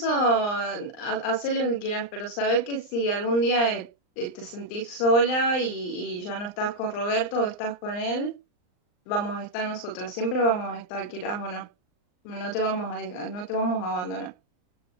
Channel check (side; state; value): right; late; 39 ms